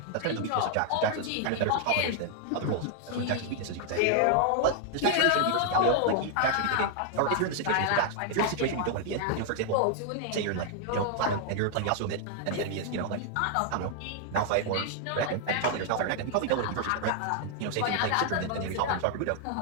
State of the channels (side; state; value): both; different; correlation 0.00